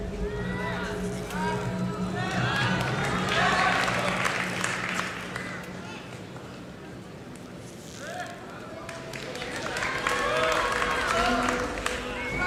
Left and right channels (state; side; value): identical; both; correlation 1.00